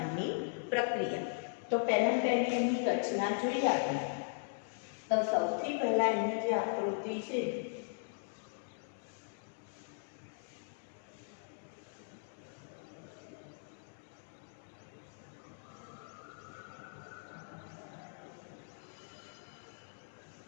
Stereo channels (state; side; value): silent; right; digital silence